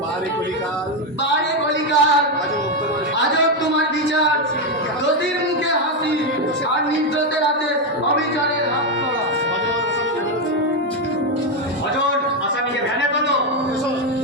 বারে কলিকাল, আজব তোমার বিচার। দোষীর মুখে হাসি আর নির্দোষের হাতে অবিচারের হাত করা। অজন, আসামিকে ভ্যানে তোলো।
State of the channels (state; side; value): normal; both; correlation 0.06